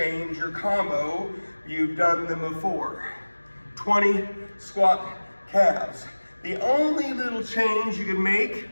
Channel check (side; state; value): both; inverted; correlation -1.00